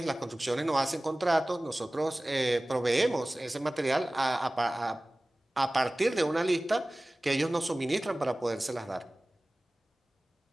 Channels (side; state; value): both; normal; correlation 0.98